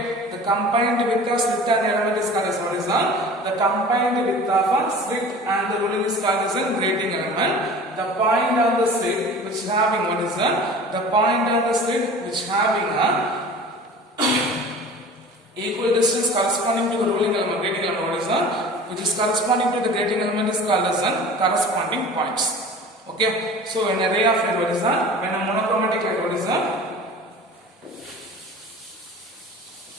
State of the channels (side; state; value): both; normal; correlation 0.40